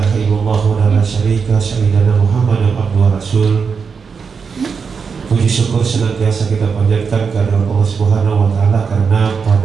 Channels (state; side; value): quieter; left; 5.7 dB